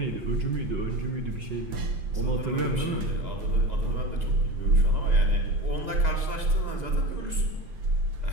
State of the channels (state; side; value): late; left; 2.0 ms